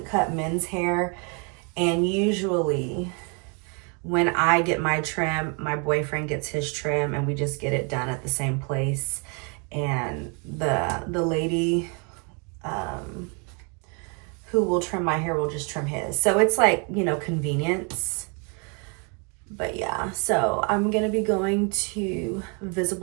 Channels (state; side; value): quieter; left; 35.5 dB